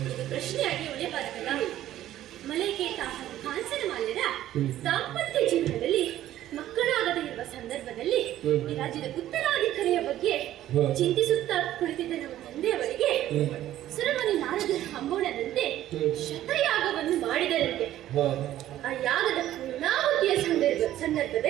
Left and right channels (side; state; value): left; quieter; 13.1 dB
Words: ಪ್ರಶ್ನೆಯಾಗಿ ಉಳಿಯಬಾರದಲ್ಲ. ಮಲೈಕೇತ ಹಾಗೂ ಕಾಂಚನ ಮಾಲ್ಯರ ದಾಂಪತ್ಯ ಜೀವನದಲ್ಲಿ ಮಕ್ಕಳಾಗದೇ ಇರುವ ಸಂದರ್ಭದಲ್ಲಿ ಈ ರಾಜ್ಯದ ಉತ್ತರಾಧಿಕಾರಿಯ ಬಗ್ಗೆ ಚಿಂತಿಸುತ್ತಾ ಕುಳಿತಿದ್ದ ನಮ್ಮ ತಂದೆಯವರಿಗೆ ಸುರಮುನಿ ನಾರದರ ಹಂಬೋಣದಂತೆ ಶತಯಾಗವನ್ನು ಮಾಡಿದರಂತೆ. ಆ ಯಾಗದ ಪೂರ್ಣಾಹುತಿಯ